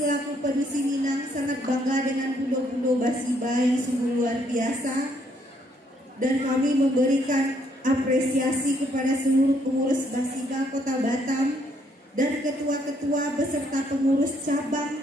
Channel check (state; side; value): normal; both; correlation 0.70